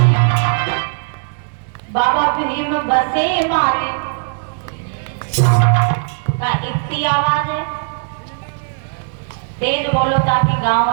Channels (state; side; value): silent; left; digital silence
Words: बाबा भीम बसे मारे। का इतनी आवाज है, तेज बोलो ताकि गांव